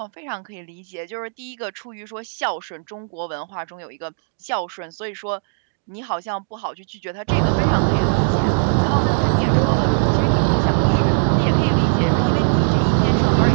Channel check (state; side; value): silent; left; digital silence